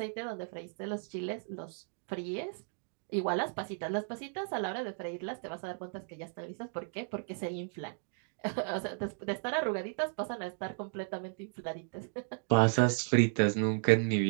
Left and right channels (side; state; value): left; silent; 55 dB below the other